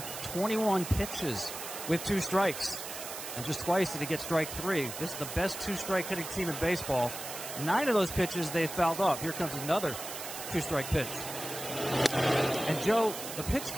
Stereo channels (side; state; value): right; noise; hiss, 8 dB below the sound